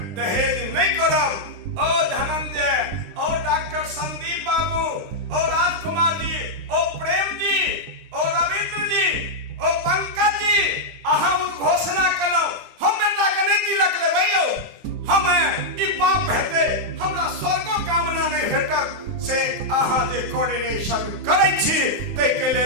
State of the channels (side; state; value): left; late; 9.9 ms